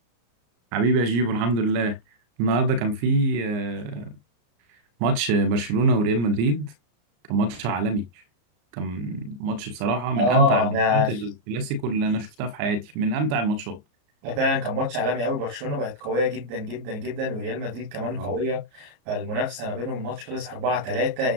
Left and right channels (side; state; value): left; late; 34 ms